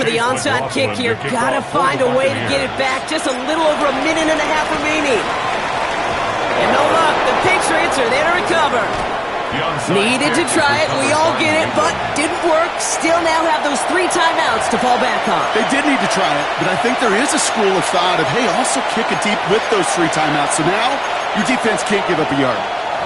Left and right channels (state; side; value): identical; both; correlation 1.00